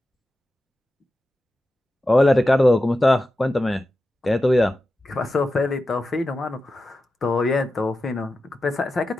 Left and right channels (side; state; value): both; normal; correlation 0.92